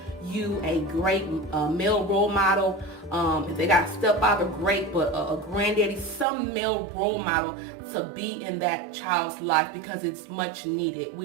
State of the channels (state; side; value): drops out; left; at 6.2 s